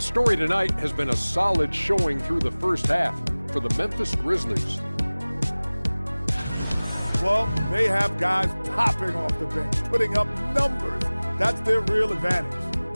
story tonight has been a solid showing through the first half for the Memphis Grizzlies. Well, they have guys popping off the bench, putting up numbers. That's their real advantage.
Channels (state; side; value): inverted; both; correlation -1.00